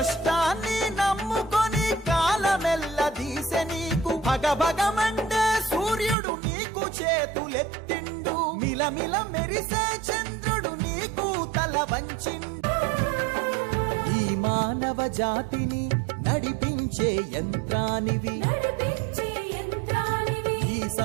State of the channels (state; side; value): drops out; left; at 6.2 s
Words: నమ్ముకొని కాలమెల్ల దీసె నీకు భగభగమండే సూర్యుడు నీకు చేతులెత్తిండు మిలమిల మెరిసే చంద్రుడు నీకు తల వంచిండు ఈ మానవ జాతిని నడిపించే యంత్రానివి ఈ